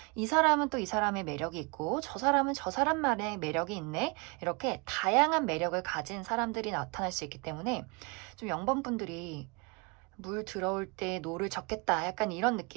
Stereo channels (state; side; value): quieter; left; 31.1 dB